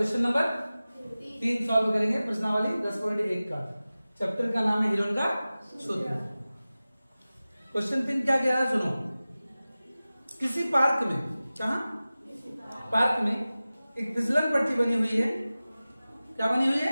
नंबर 3 सॉल्व करेंगे प्रश्नावली 10.1 का। चैप्टर का नाम है हिरोन का सूत्र। क्वेश्चन 3 क्या कह रहा है सुनो। किसी पार्क में, जहां पार्क में एक फिसलन पट्टी बनी हुई है। क्या बनी हुई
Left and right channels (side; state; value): both; inverted; correlation -0.97